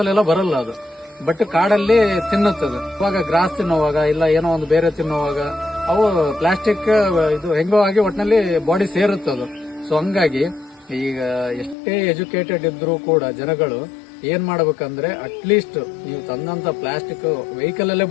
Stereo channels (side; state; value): right; drops out; at 11.8 s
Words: ಅಲ್ಲೆಲ್ಲ ಬರಲ್ಲ ಅದು, ಬಟ್ ಕಾಡಲ್ಲಿ ತಿನ್ನುತ್ತದೆ. ಇವಾಗ ಗ್ರಾಸ್ ತಿನ್ನುವಾಗ ಇಲ್ಲ ಏನೋ ಒಂದು ಬೇರೆ ತಿನ್ನುವಾಗ ಅವು ಪ್ಲಾಸ್ಟಿಕ್ ಇದು ಹೆಂಗೋ ಆಗಿ ಒಟ್ಟಿನಲ್ಲಿ ಬಾಡಿ ಸೇರುತ್ತದು. ಸೊ ಹಂಗಾಗಿ ಈಗ ಎಷ್ಟೇ ಎಜುಕೇಟೆಡ್ ಇದ್ರೂ ಕೂಡ ಜನಗಳು ಏನ್ ಮಾಡ್ಬೇಕಂದ್ರೆ ಅಟ್ಲೀಸ್ಟ್ ನೀವು ತಂದಂತ ಪ್ಲಾಸ್ಟಿಕ್ ವೆಹಿಕಲ್ ಅಲ್ಲೇ